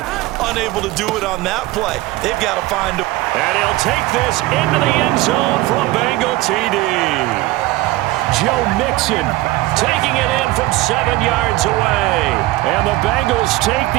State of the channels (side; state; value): left; quieter; 18.4 dB